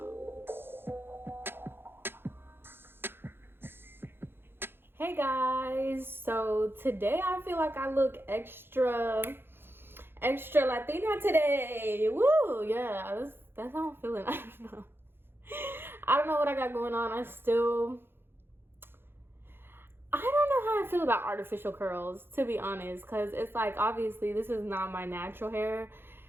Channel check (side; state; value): left; late; 0.10 ms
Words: Hey guys, so today I feel like I look extra Latina today. Woo, yeah, that's how I'm feeling. I don't know what I got going on. I don't know how I feel about artificial curls, to be honest, because it's like, obviously, this is not my natural hair.